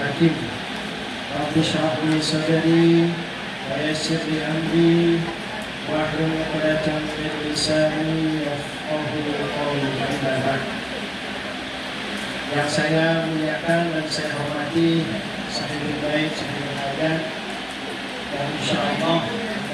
Rabbi shrah li sadri wa yassir li amri wahlul 'uqdatam min lisani yafqahu qawli. Amma ba'd. Yang saya muliakan dan saya hormati sahibul bait, sahibul hajat, dan insyaallah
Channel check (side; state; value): both; identical; correlation 1.00